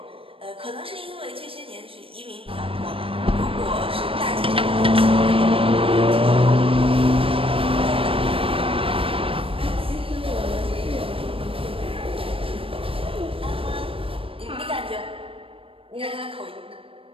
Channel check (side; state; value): left; late; 0.27 ms